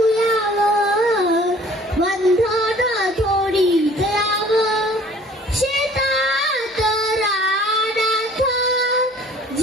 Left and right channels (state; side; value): normal; both; correlation 0.52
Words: यावा, बंधन थोडी दयावा. शेतात रानात